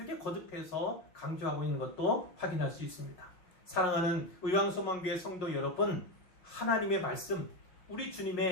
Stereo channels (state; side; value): late; right; 5.5 ms